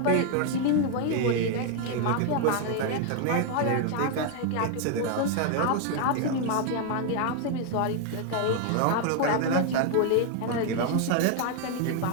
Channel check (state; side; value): different; both; correlation 0.00